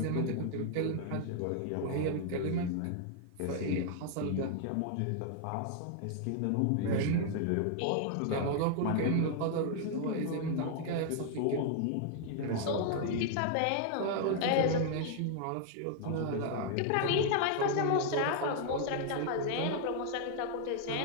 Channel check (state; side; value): different; both; correlation 0.00